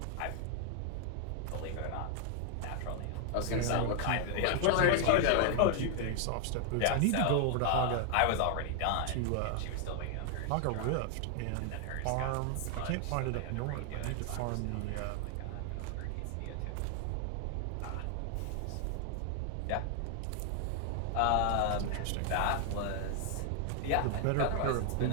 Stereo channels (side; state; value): both; different; correlation 0.00